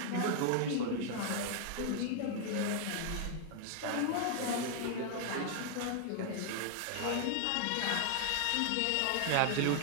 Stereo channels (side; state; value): both; different; correlation 0.00